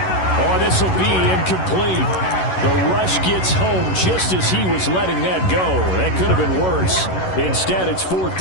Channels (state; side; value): late; right; 11 ms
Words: Oh, this will be incomplete. The rush gets home just as he was letting that go. That could have been worse. Instead, it's 4th